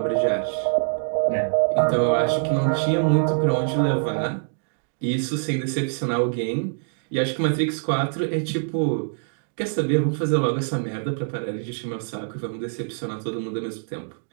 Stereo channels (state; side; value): silent; left; digital silence